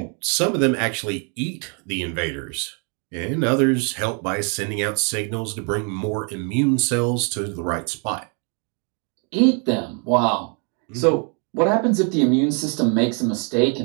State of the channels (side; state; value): left; quieter; 37.7 dB